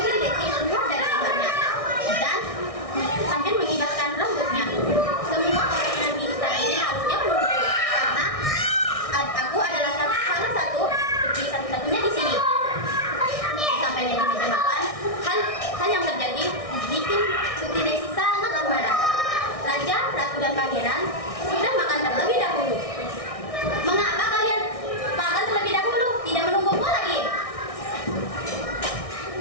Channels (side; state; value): right; late; 1.6 ms